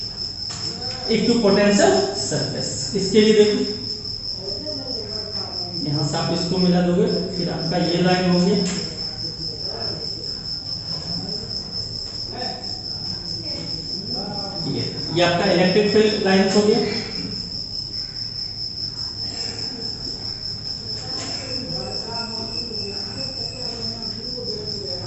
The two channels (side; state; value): both; identical; correlation 1.00